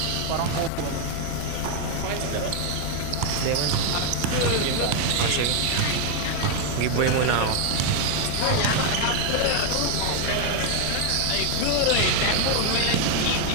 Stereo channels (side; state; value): both; different; correlation 0.00